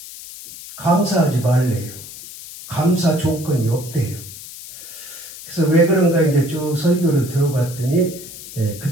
감사하지 말래요. 감사 조건이 없대요. 그래서 왜 그런가 이제 쭉 설교를 들어봤더니 그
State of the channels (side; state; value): left; noise; hiss, 14 dB below the sound